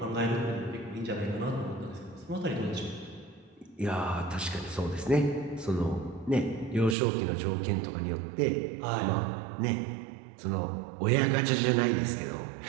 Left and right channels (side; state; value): left; drops out; at 7.0 s